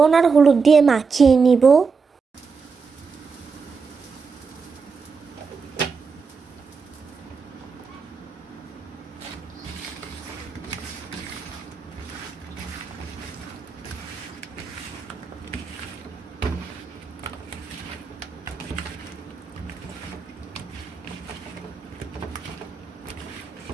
আর হলুদ দিয়ে মাখিয়ে নিব।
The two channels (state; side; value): quieter; left; 5.2 dB